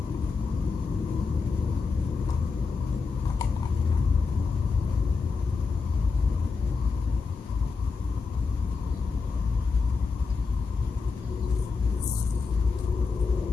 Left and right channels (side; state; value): right; quieter; 4.8 dB